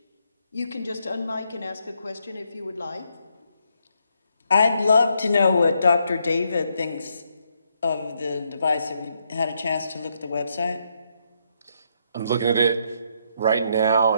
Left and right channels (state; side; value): inverted; both; correlation -0.76